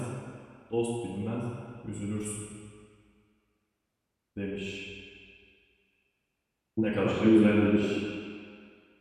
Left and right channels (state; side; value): identical; both; correlation 1.00